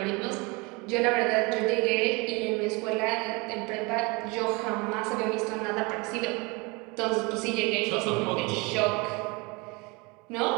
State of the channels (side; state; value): left; quieter; 27.2 dB